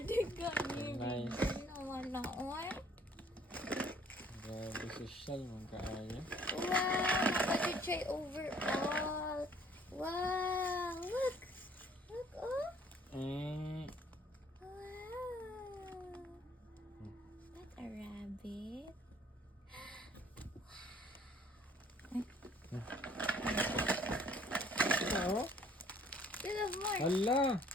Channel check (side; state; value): both; normal; correlation 0.59